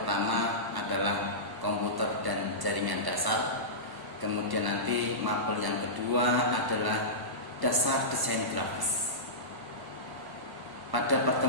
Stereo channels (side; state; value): left; late; 1.0 ms